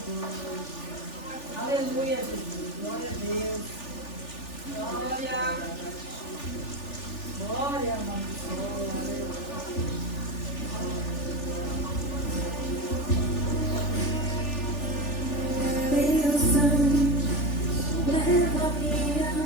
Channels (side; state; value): right; late; 3.4 ms